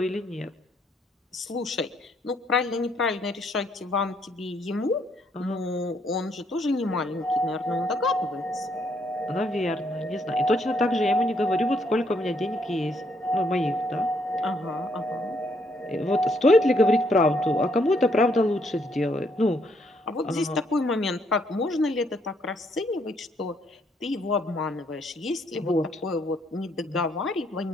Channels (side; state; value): both; normal; correlation 0.71